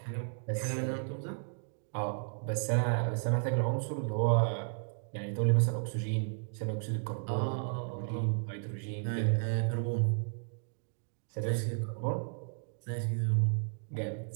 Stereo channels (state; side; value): silent; left; digital silence